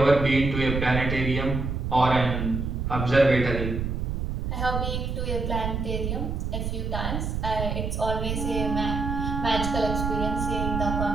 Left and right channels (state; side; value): noise; right; rumble, 2 dB below the sound